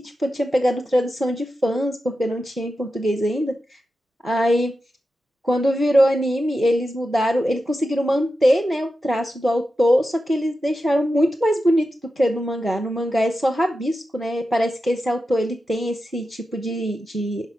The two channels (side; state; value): both; normal; correlation 0.91